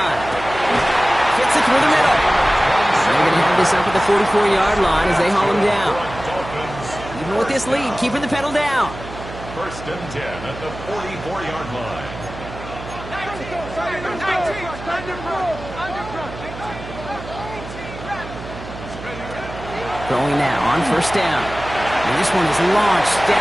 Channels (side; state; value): right; noise; hum, 12 dB below the sound